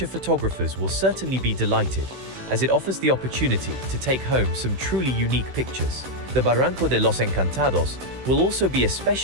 photographers will certainly be delighted, as it offers the opportunity to take home some truly unique pictures. The Barranco de los Encantados will also be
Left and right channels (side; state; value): left; late; 16 ms